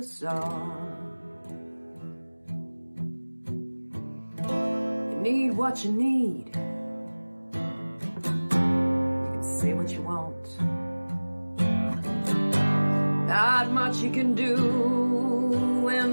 song. You need what you need. You can say what you want. Not much you can do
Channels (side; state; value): both; inverted; correlation -1.00